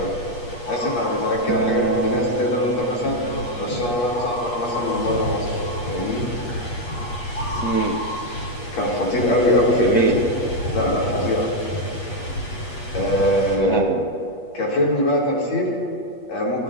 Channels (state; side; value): late; right; 8.3 ms